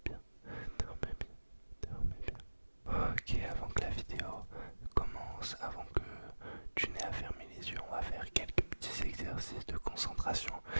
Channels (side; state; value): both; inverted; correlation -1.00